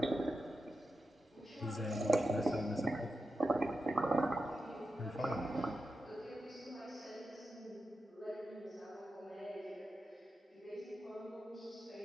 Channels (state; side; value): normal; both; correlation 0.89